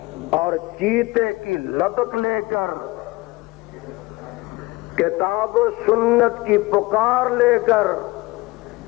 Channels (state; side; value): quieter; right; 21.8 dB